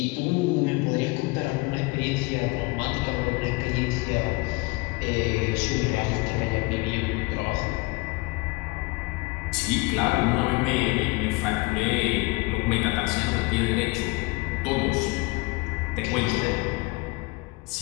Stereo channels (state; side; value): quieter; right; 24.7 dB